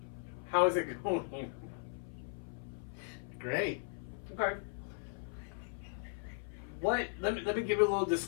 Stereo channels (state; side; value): silent; right; 53 dB below the other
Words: How is it going? Great. Okay. Let me give you a little